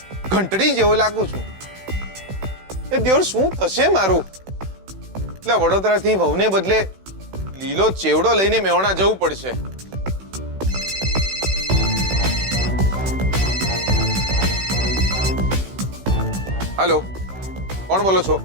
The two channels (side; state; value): left; late; 16 ms